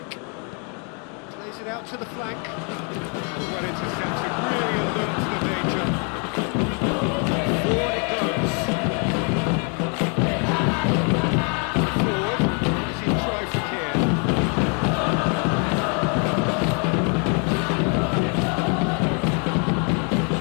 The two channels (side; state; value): right; quieter; 37.8 dB